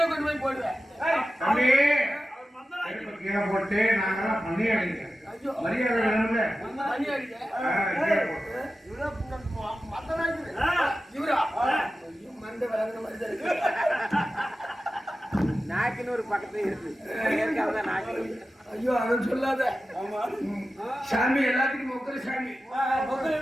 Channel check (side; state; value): both; normal; correlation 0.94